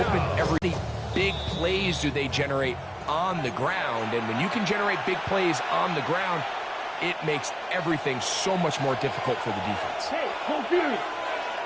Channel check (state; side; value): identical; both; correlation 1.00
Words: every big plays do they generate on the ground. And when you can generate big plays on the ground, it makes everything so much more difficult for the defense. Hey, hold period.